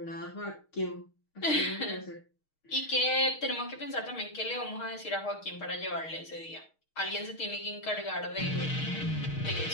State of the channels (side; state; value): right; late; 6.4 ms